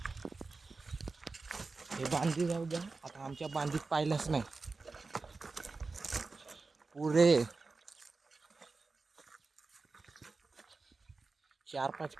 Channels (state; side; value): quieter; left; 3.9 dB